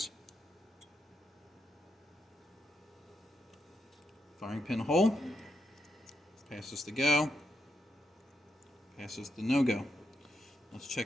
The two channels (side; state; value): both; normal; correlation 0.83